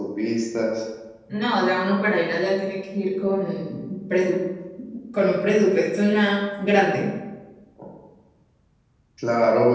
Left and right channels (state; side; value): identical; both; correlation 1.00